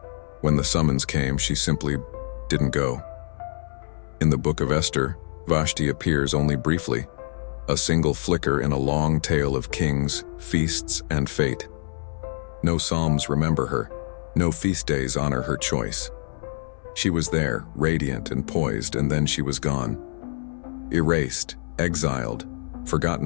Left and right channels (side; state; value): right; silent; 62 dB below the other